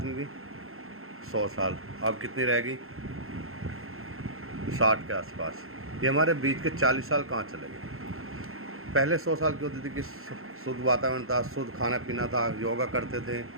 की? 100 साल। अब कितनी रहेगी? 60 के आसपास। ये हमारे बीच के 40 साल कहाँ चले गए? पहले 100 साल की होती थी कि शुद्ध वातावरण था, शुद्ध खाना पीना था, योगा करते थे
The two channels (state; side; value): late; left; 0.62 ms